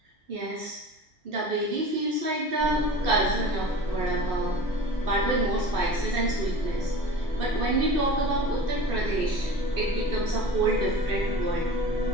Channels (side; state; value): both; normal; correlation 0.38